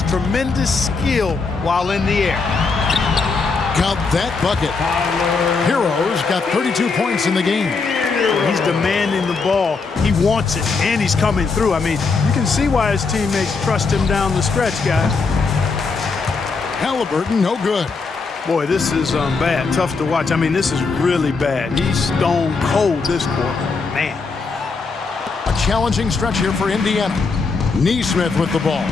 Tremendous skill while in the air. Count that bucket. Herro's got 32 points in the game. He's demanding the ball. He wants it, and he's coming through. I mean, you can see why his teammates trust him down the stretch, guys. Haliburton, no good. Boy, this is bad. Tough to watch. I mean, this is really bad. He's stone cold this quarter. Man. A challenging stretch here for Indiana. Neesmith with the ball.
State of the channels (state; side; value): quieter; right; 4.5 dB